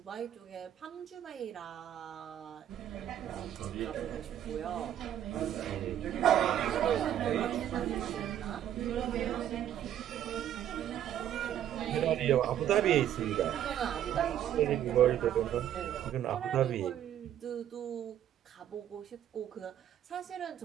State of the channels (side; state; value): left; quieter; 10.9 dB